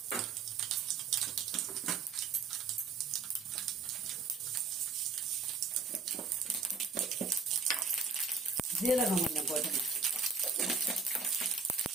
ஜீரகம் கொஞ்சம் போட்டுங்க.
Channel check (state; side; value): quieter; left; 4.6 dB